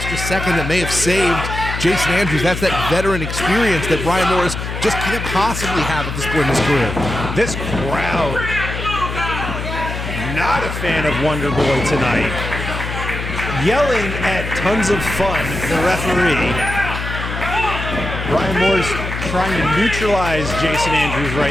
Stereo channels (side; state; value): left; noise; hum, 5 dB below the sound